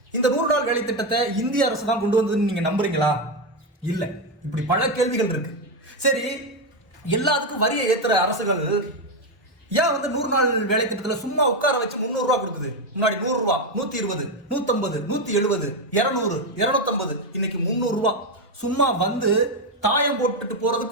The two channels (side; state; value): both; normal; correlation 0.08